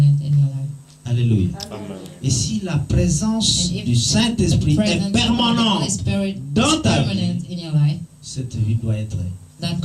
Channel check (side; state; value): both; identical; correlation 1.00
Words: in your life. Alléluia. Et si la présence And if du Saint-Esprit The est presence of the Holy permanente Spirit dans is ta vie, permanent in your life, cette vie doit être that life